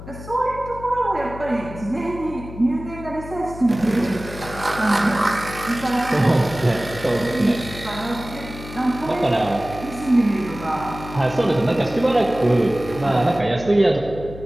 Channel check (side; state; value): left; noise; hum, 13 dB below the sound